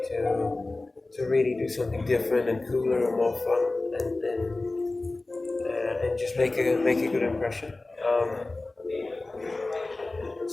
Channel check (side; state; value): right; quieter; 3.1 dB